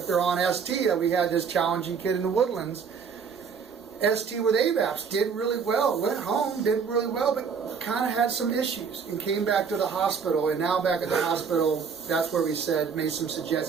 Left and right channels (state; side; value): quieter; left; 6.2 dB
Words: they're on ST, we had this challenging kid in the Woodlands, ST with AVAPs, did really well, went home, did really well, but kind of had some issues and came back to the hospital. And now back at the hospital, that's where we said, made some